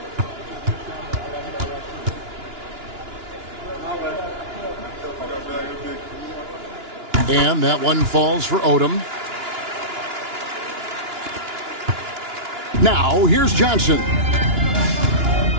And that one falls for Odom. Now, here's Johnson.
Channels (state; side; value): late; left; 2.9 ms